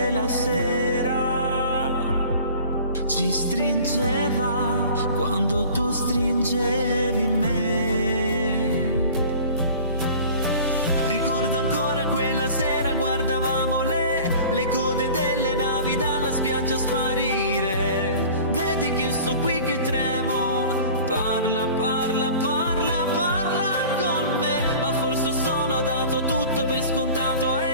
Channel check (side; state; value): both; inverted; correlation -0.43